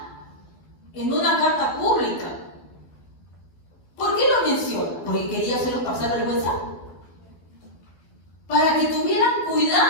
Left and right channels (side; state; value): right; late; 12 ms